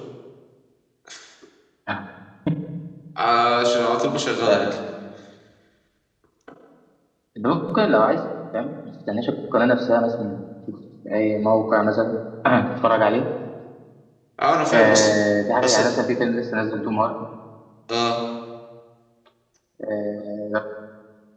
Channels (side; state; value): both; identical; correlation 1.00